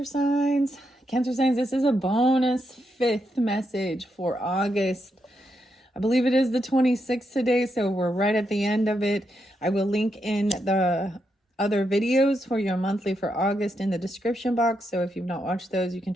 signs. Cancer signs, this is a bonus fifth message for August. I believe it is the 26th today, so we're right at the end of it. I will link in the other videos for your monthly for August in the description box, so if you've not watched those, you can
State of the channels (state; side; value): normal; both; correlation 0.82